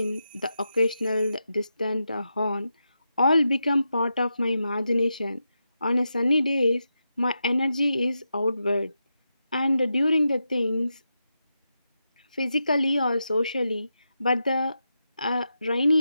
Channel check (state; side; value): inverted; both; correlation -0.88